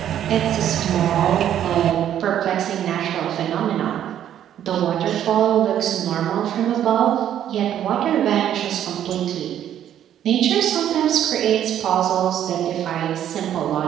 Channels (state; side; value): quieter; left; 10.6 dB